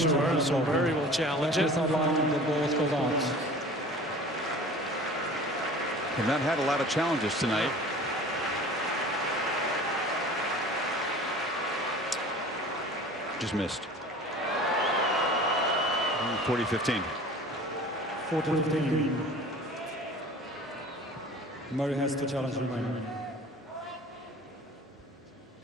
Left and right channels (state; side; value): normal; both; correlation 0.42